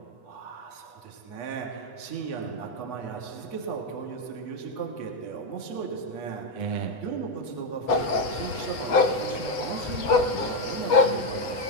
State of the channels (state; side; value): late; right; 8.2 ms